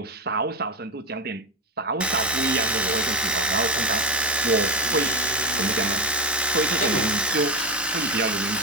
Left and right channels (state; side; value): normal; both; correlation 0.14